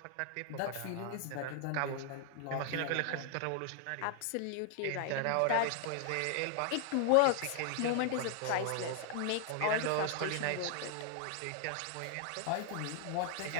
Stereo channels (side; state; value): both; different; correlation 0.00